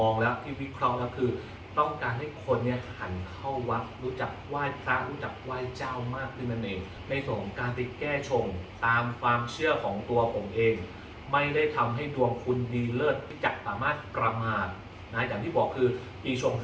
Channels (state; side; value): identical; both; correlation 1.00